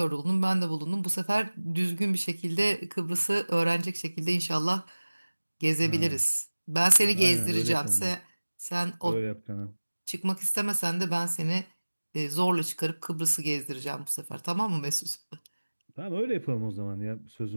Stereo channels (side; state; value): both; inverted; correlation -1.00